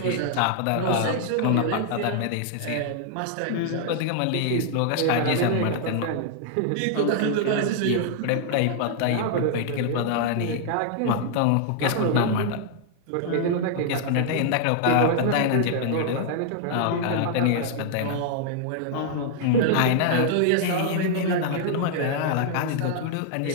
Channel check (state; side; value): different; both; correlation -0.01